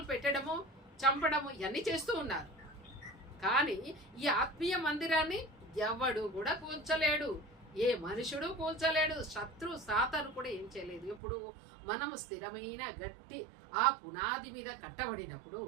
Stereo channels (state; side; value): drops out; left; at 11.2 s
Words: పెట్టడము, చంపడము ఇవన్నీ చేస్తూ ఉన్నారు. కానీ ఈ ఆత్మీయ మందిరాన్ని ఎవడు కూడా కూల్చలేడు, ఏ మనుషుడు కూల్చలేడు. శత్రు సాతాను కూడా ఏం చేయలేదు. ఇప్పుడు మనము స్థిరమైన గట్టి ఆ పునాది మీద కట్టబడినప్పుడు,